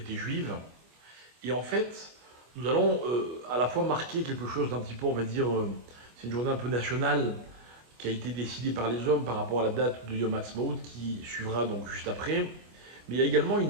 juives. Et en fait, nous allons à la fois marquer quelque chose d'un petit peu, on va dire, c'est une journée un peu nationale, qui a été décidé par les hommes par rapport à la date de Yom Ha'atzmaut qui suivra donc juste après. Mais il y a également une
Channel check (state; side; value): late; left; 25 ms